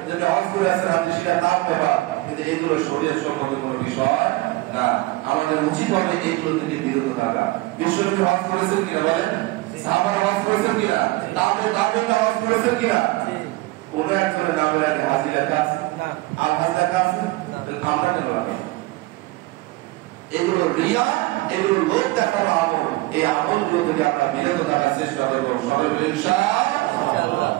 যে হজ করে আসেন আপনি, সেটা তার ব্যাপার, কিন্তু এগুলো শরীয়ত সম্মত কোনো বিষয় না। আমাদের উচিত হবে এগুলো থেকে বিরত থাকা। বিশ্বনবী হজ করেছেন কিনা বলেন? সাহাবারা হজ করেছেন কিনা? তাবেঈনরা হজ করেছেন কিনা? কোন একজনের নামের আগে হাজি লেখা আছে? আর হাজ লেখা আছে? আমরা কেন লাগাবো? এগুলো রিয়া, এগুলো লোক দেখানো আমল। এই আমলগুলো থেকে আমরা বিরত থাকার চেষ্টা করব। সবাই ইনশাআল্লাহ,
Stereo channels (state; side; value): quieter; left; 20.3 dB